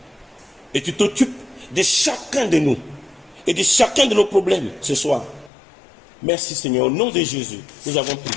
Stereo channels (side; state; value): right; drops out; at 5.5 s